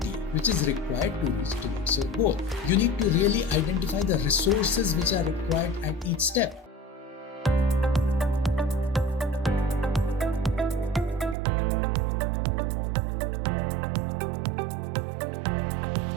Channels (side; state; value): left; drops out; at 11.4 s